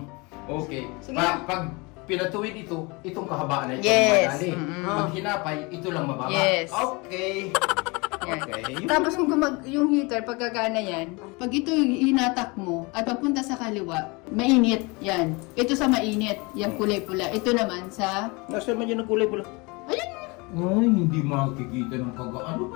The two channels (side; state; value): right; quieter; 27.1 dB